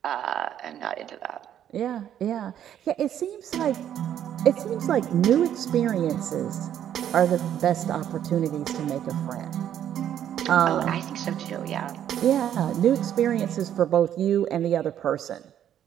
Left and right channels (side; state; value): left; quieter; 10.4 dB